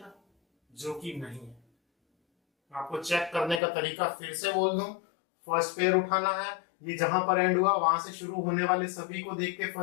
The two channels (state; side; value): drops out; right; at 3.6 s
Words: जो कि नहीं है। आपको चेक करने का तरीका फिर से बोल दूं, फर्स्ट पेयर उठाना है, ये जहां पर एंड हुआ वहां से शुरू होने वाले सभी को देख के